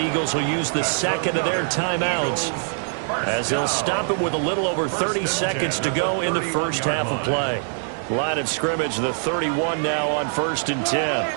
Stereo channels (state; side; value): silent; left; digital silence